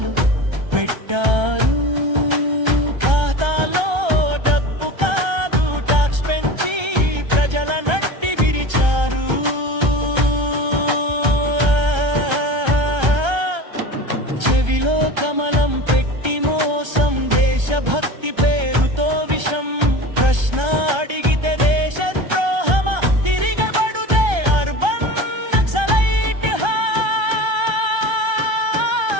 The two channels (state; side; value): late; left; 1.3 ms